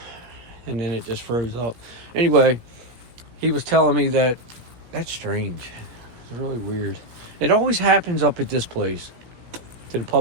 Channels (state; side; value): late; left; 17 ms